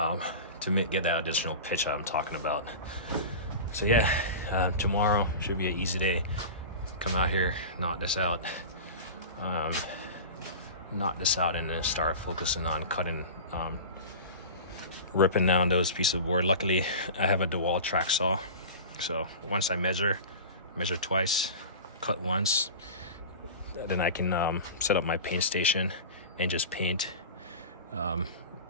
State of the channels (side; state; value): both; inverted; correlation -0.32